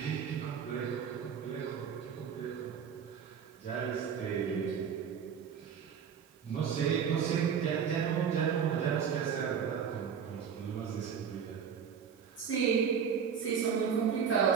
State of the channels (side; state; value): left; quieter; 7.4 dB